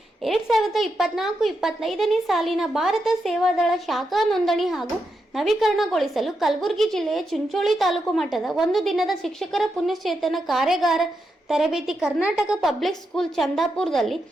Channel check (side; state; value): both; normal; correlation 0.85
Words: 2024-25ನೇ ಸಾಲಿನ ಭಾರತ ಸೇವಾದಳ ಶಾಖಾ ನೋಂದಣಿ ಹಾಗೂ ನವೀಕರಣಗೊಳಿಸಲು ಕಲಬುರಗಿ ಜಿಲ್ಲೆಯ ಚಿಂಚೋಳಿ ತಾಲೂಕು ಮಟ್ಟದ ಒಂದು ದಿನದ ಶಿಕ್ಷಕರ ಪುಣ್ಯಚೇತನ ಕಾರ್ಯಾಗಾರ ತರಬೇತಿ ಕರ್ನಾಟಕ ಪಬ್ಲಿಕ್ ಸ್ಕೂಲ್ ಚಂದಾಪುರದಲ್ಲಿ